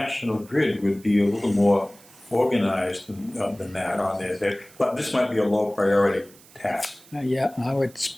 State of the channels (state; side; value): noise; right; hiss, 24 dB below the sound